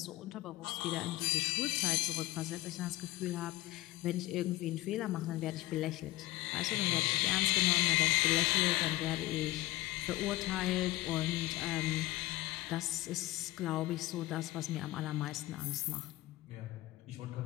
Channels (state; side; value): quieter; right; 17.4 dB